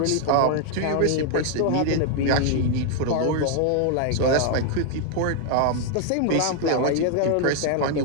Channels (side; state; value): both; different; correlation 0.00